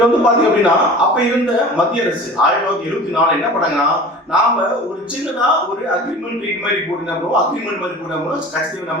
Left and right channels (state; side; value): normal; both; correlation 0.39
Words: வந்து பாத்தீங்க அப்படின்னா அப்ப இருந்த மத்திய அரசு 1974 என்ன பண்ணாங்கன்னா, நாம ஒரு சின்னதா ஒரு அக்ரிமெண்ட் மாதிரி போட்டுருந்தோம், அக்ரிமெண்ட் மாதிரி போட்டோம்னா கட்சி